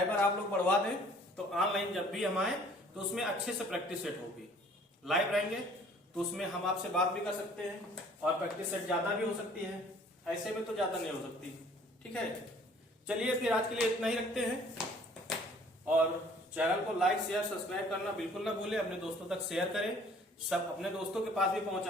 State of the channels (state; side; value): normal; both; correlation 0.55